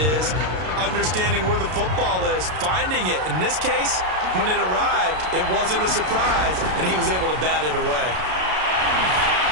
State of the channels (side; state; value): left; late; 33 ms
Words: understanding where the football is, finding it. In this case, when it arrived, it wasn't a surprise, and he was able to bat it away.